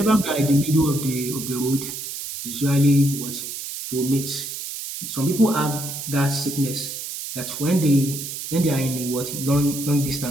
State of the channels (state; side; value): noise; right; hiss, 7 dB below the sound